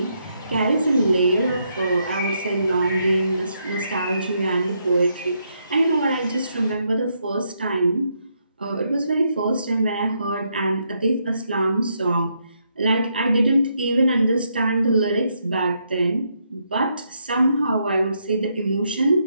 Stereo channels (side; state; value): both; inverted; correlation -0.77